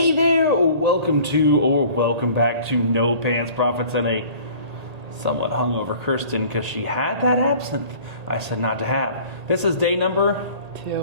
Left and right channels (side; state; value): left; late; 1.8 ms